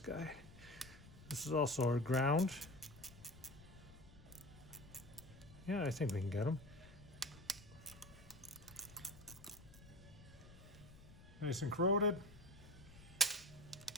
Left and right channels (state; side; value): noise; left; rumble, 19 dB below the sound